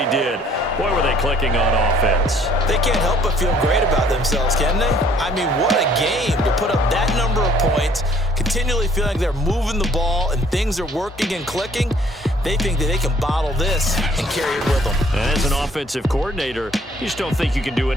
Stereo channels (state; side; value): normal; both; correlation 0.60